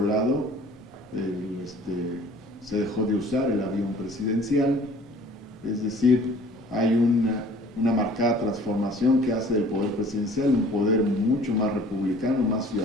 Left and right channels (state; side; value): normal; both; correlation 0.50